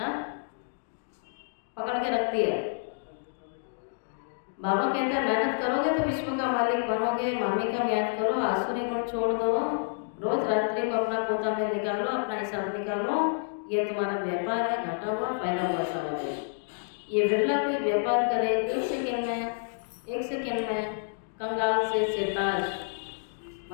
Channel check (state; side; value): silent; right; digital silence